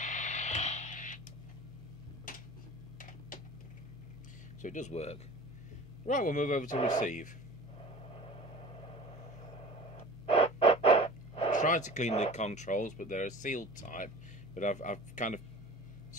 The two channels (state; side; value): normal; both; correlation 0.40